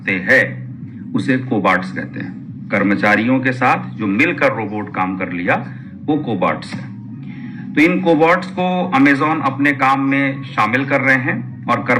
हैं उसे कोबार्ट्स कहते हैं। कर्मचारियों के साथ जो मिलकर रोबोट काम कर लिया वो कोबार्ट्स है। तो इन कोबार्ट्स को अमेजॉन अपने काम में शामिल कर रहे हैं और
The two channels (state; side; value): identical; both; correlation 1.00